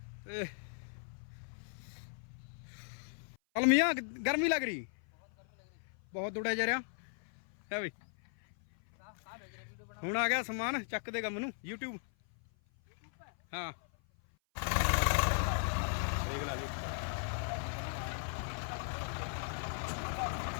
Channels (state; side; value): silent; right; 53 dB below the other